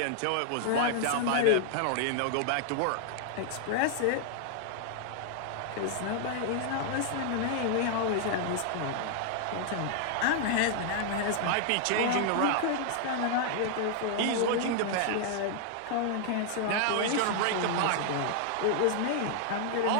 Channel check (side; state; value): both; different; correlation 0.00